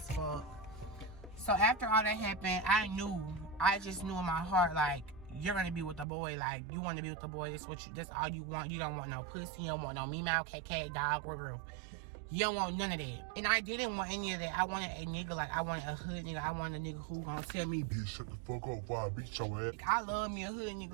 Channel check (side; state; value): left; drops out; at 6.1 s